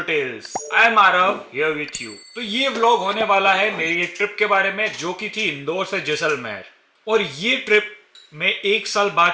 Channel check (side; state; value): both; identical; correlation 1.00